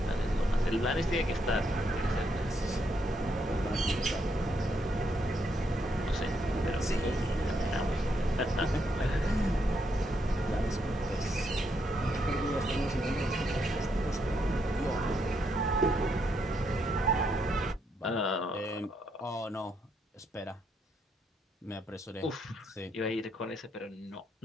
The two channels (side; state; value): both; normal; correlation 0.77